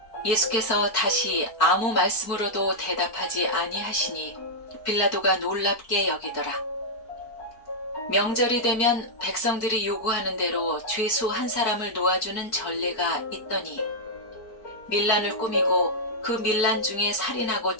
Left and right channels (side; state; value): right; late; 4.6 ms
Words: 예수께서 다시 아무 말씀으로도 대답하지 아니하시니 빌라도가 놀랍게 여기더라. 명절이 되면 백성들이 요구하는 대로 죄수 한 사람을 놓아주는 전례가 있더니 밀란을 꾸미고 그 밀란 중에 살인하고